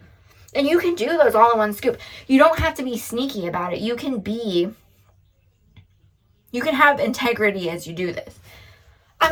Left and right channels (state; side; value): identical; both; correlation 1.00